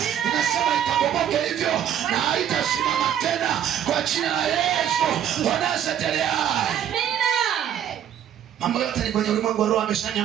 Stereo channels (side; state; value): left; quieter; 9.9 dB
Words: Ninasema ikabomoke hivyo na haitasimama tena kwa jina la Yesu wa Nazareti aliye hai. Mambo yote ni kwenye ulimwengu wa roho,